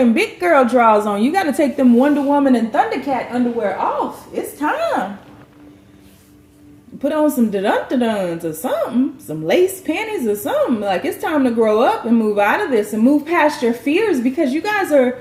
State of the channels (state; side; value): identical; both; correlation 1.00